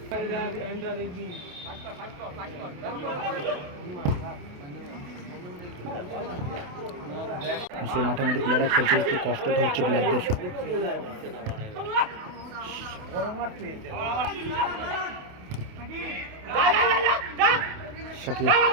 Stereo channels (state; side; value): late; left; 28 ms